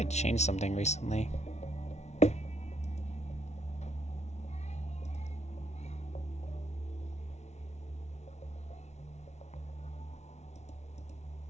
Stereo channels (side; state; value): right; late; 0.32 ms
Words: changed something recently.